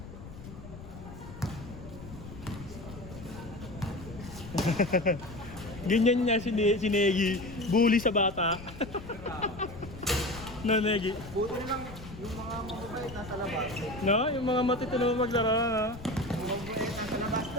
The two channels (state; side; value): noise; left; rumble, 14 dB below the sound